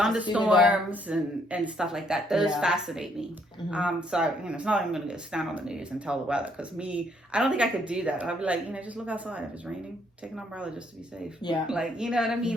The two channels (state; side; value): normal; both; correlation 0.69